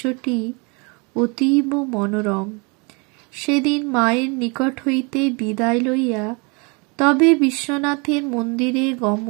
অতীব মনোরম। সেদিন মায়ের নিকট হইতে বিদায় লইয়া তবে বিশ্বনাথের মন্দিরে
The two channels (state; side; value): quieter; left; 31.2 dB